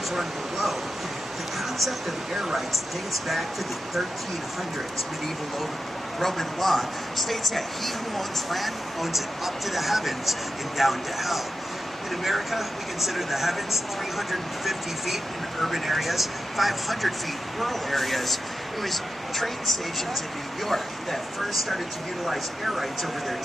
run below. The concept of air rights dates back to the 1300s. Medieval Roman law states that he who owns land owns it up to the heavens and down to hell. In America, we consider the heavens 350 feet in urban areas, 500 feet in rural areas. It was train stations in New York that first started to utilize air rights over their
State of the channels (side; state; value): both; normal; correlation 0.90